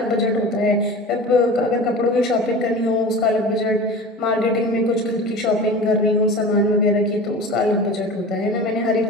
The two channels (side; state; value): both; normal; correlation 0.35